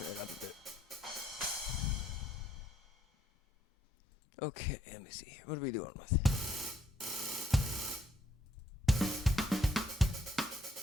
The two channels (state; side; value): normal; both; correlation 0.71